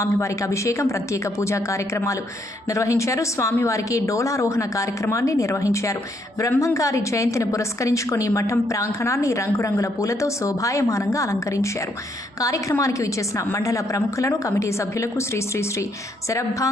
అభిషేకం, ప్రత్యేక పూజా కార్యక్రమాలు నిర్వహించారు. స్వామివారికి డోలారోహణ కార్యక్రమాన్ని నిర్వహించారు. బ్రహ్మంగారి జయంతిని పురస్కరించుకొని మఠం ప్రాంగణాన్ని రంగురంగుల పూలతో శోభాయమానంగా అలంకరించారు. కార్యక్రమానికి విచ్చేసిన మండల ప్రముఖులను, కమిటీ సభ్యులకు శ్రీ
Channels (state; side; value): normal; both; correlation 0.73